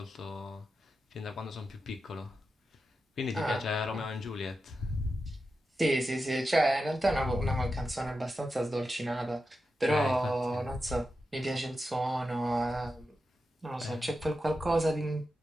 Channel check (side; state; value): both; normal; correlation 0.90